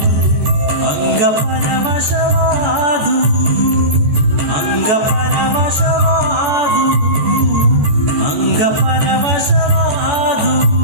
ಅಂಗ ಪರವಶವಾದು ಅಂಗ ಪರವಶವಾದು ಅಂಗ ಪರವಶವಾದು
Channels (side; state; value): left; late; 14 ms